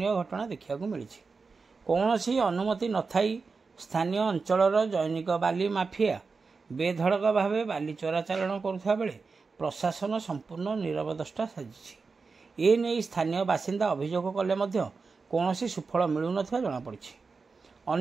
ଘଟଣା ଦେଖିବାକୁ ମିଳିଛି। କୌଣସି ଅନୁମତି ନଥାଇ ସ୍ଥାନୀୟ ଅଞ୍ଚଳର ଜୈନିକ ବାଲି ମାଫିଆ ବେଧଡ଼କ ଭାବେ ବାଲି ଚୋରାଚାଲାଣ କରୁଥିବା ବେଳେ ପ୍ରଶାସନ ସମ୍ପୂର୍ଣ୍ଣ ନୀରବଦ୍ରଷ୍ଟା ସାଜିଛି। ଏ ନେଇ ସ୍ଥାନୀୟ ବାସିନ୍ଦା ଅଭିଯୋଗ କଲେ ମଧ୍ୟ କୌଣସି ସୁଫଳ ମିଳୁନଥିବା ଜଣାପଡ଼ିଛି।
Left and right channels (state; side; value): quieter; left; 4.6 dB